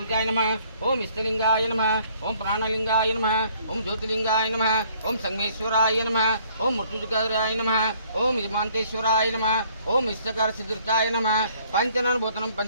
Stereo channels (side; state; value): both; inverted; correlation -0.61